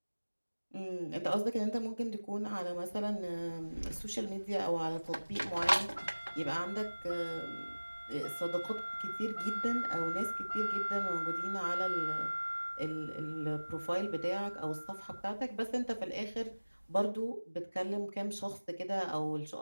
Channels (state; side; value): inverted; both; correlation -1.00